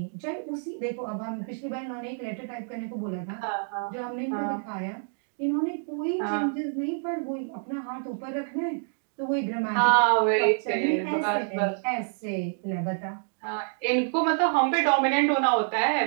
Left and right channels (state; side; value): silent; left; digital silence